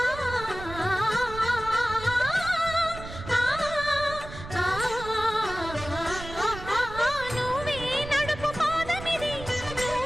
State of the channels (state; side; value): noise; right; rumble, 12 dB below the sound